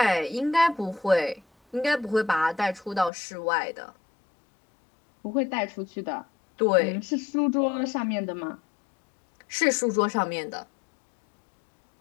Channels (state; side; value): drops out; right; at 3.1 s